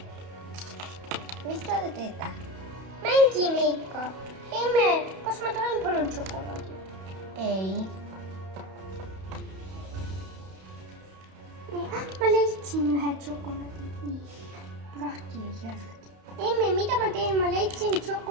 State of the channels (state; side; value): late; left; 31 ms